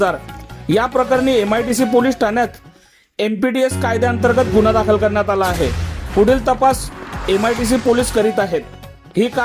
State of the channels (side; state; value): both; identical; correlation 1.00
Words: या प्रकरणी MIDC पोलीस ठाण्यात MPDS कायद्याअंतर्गत गुन्हा दाखल करण्यात आला आहे. पुढील तपास MIDC पोलीस करीत आहेत. ही